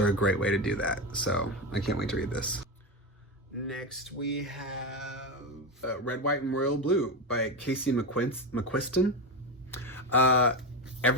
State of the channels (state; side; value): normal; both; correlation 0.16